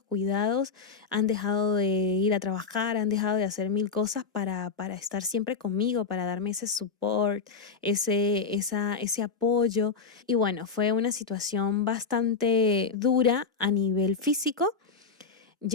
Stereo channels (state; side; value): quieter; right; 5.0 dB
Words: cuidados? Han dejado de ir a trabajar, han dejado de hacer mil cosas para estar siempre conmigo, para darme ese support, ese apoyo. Y bueno, fue una situación bastante dura a nivel físico.